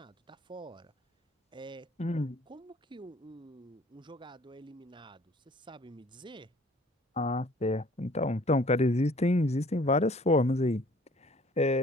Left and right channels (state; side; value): normal; both; correlation 0.55